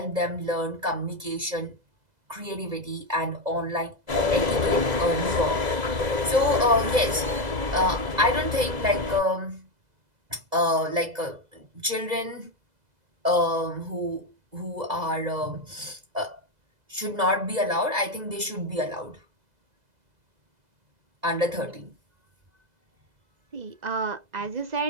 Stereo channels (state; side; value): late; left; 2.0 ms